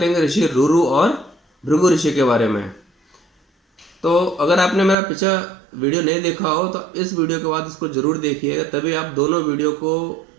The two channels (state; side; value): drops out; left; at 5.0 s